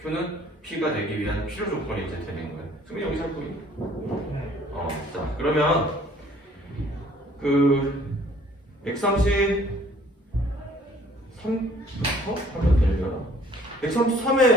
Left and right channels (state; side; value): normal; both; correlation 0.58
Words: Q는 P가 되기 위한 필요 조건이 이제 되는 거예요. 승민이 여기 잡고 있네. 자, 그러면 그 X33부터 하면 되려나?